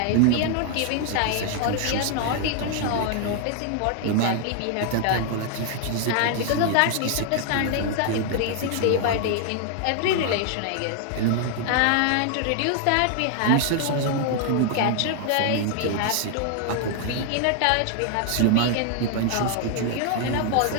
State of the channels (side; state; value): both; different; correlation 0.00